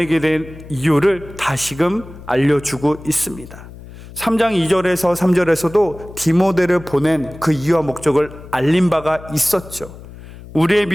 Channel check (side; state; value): left; noise; hum, 17 dB below the sound